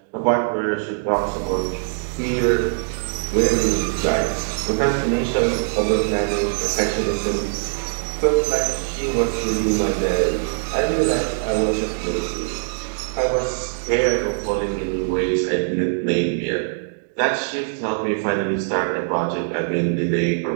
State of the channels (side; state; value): left; silent; digital silence